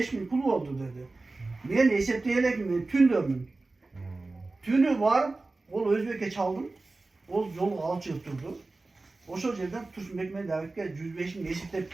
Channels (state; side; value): quieter; left; 3.3 dB